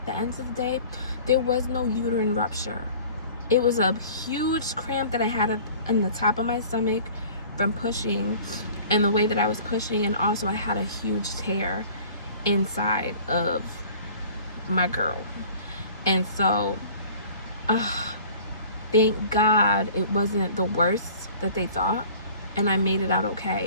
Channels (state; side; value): inverted; both; correlation -0.47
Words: the end of the day, there was no uterine rupture. It was a huge cramp that I had in the top of my stomach from pushing and the way that I was pushing, and also I had a huge tear inside of my girl. And so, thank God it wasn't the worst that they thought, and I made it out